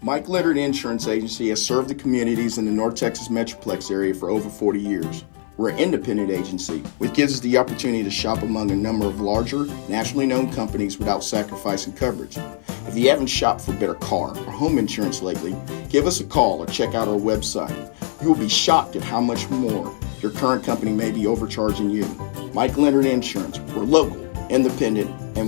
Mike Leonard Insurance Agency has served the communities in the North Texas Metroplex area for over 40 years. We're an independent agency, which gives us the opportunity to shop among a number of larger, nationally known companies without sacrificing coverage. If you haven't shopped for better car or home insurance lately, give us a call or check out our website. You will be shocked at how much more your current company may be overcharging you. Mike Leonard Insurance. We're local, independent,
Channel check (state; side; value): silent; right; 56 dB below the other